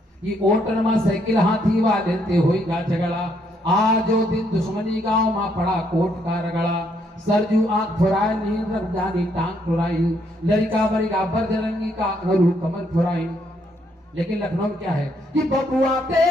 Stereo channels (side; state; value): both; normal; correlation 0.72